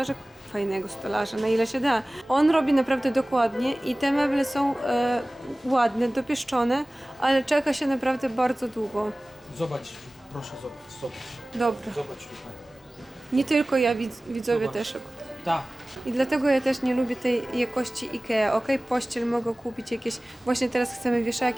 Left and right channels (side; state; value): both; normal; correlation 0.98